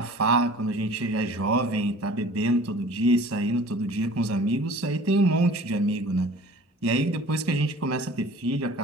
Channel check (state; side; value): normal; both; correlation 0.46